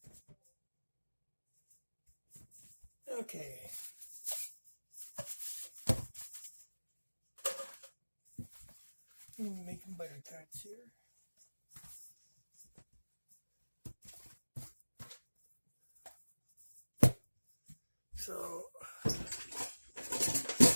Okay. I'm making butter tarts here. So, okay.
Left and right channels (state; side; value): inverted; both; correlation -1.00